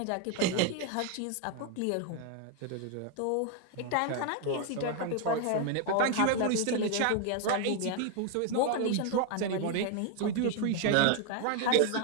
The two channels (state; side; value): different; both; correlation 0.01